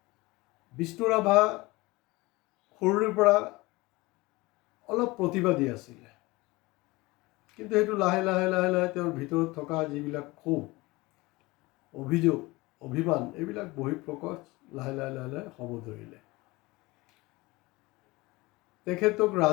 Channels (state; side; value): quieter; right; 22.0 dB